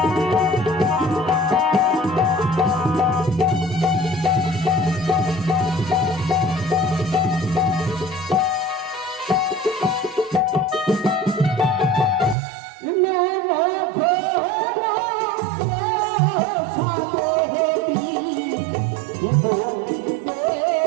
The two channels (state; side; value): drops out; left; at 12.4 s